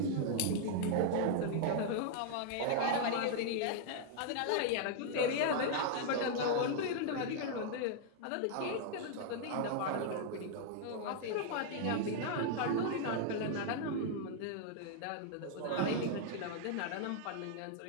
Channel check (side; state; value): both; different; correlation 0.00